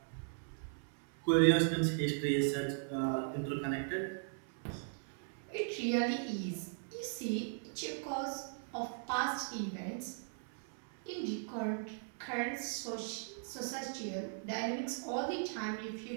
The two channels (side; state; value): left; silent; 52 dB below the other